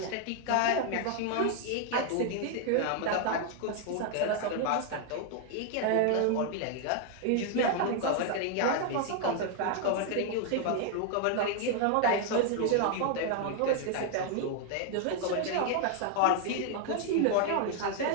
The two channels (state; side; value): different; both; correlation 0.00